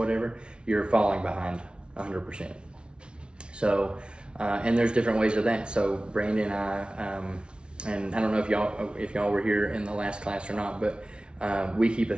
you're falling behind 100%. So, and there's different ways of that. So Brandon and I, and I don't know if y'all were here in the last class or not, but we keep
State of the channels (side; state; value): left; late; 0.057 ms